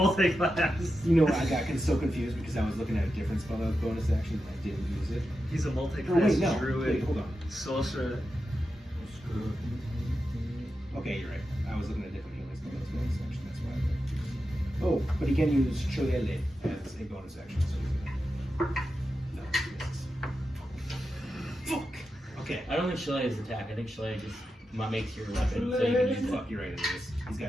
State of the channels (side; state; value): both; normal; correlation 0.89